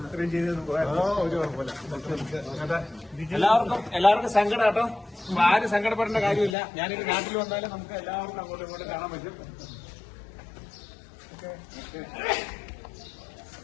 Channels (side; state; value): right; drops out; at 6.6 s